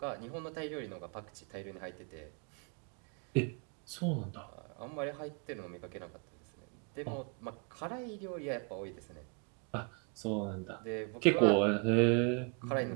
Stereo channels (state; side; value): quieter; left; 35.8 dB